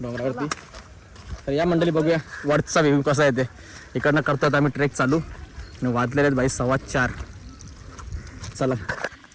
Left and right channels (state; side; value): identical; both; correlation 1.00